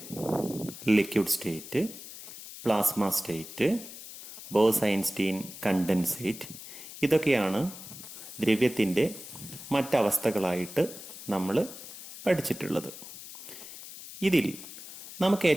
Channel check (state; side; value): noise; left; hiss, 13 dB below the sound